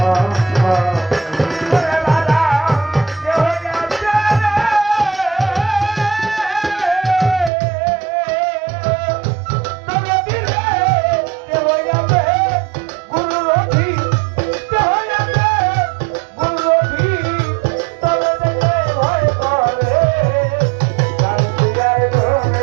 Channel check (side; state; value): left; drops out; at 7.5 s